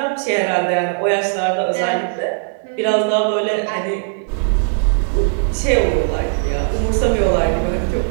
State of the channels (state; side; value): silent; left; digital silence